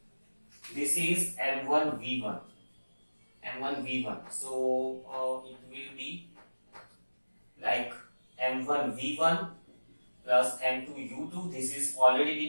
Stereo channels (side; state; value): both; inverted; correlation -1.00